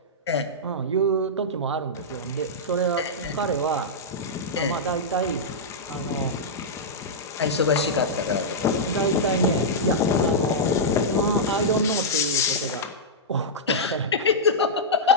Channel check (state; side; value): normal; both; correlation -0.10